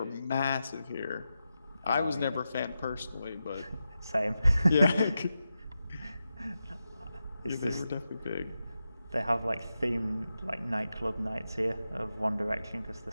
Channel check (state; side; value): inverted; both; correlation -0.90